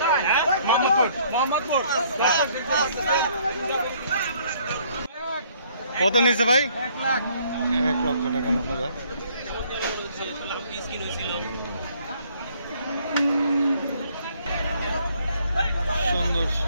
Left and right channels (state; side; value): inverted; both; correlation -0.62